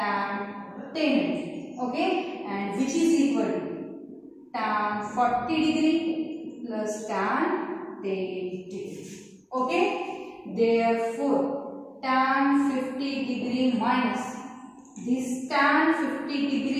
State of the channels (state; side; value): identical; both; correlation 1.00